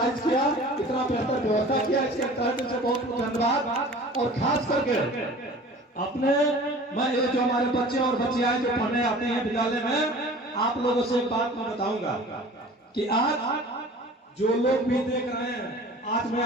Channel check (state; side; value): normal; both; correlation 0.43